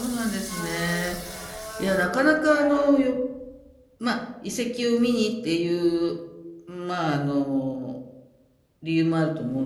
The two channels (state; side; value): identical; both; correlation 1.00